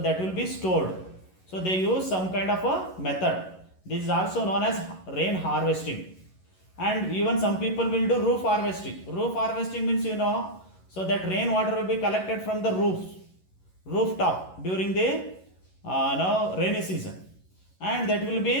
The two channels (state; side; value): late; right; 11 ms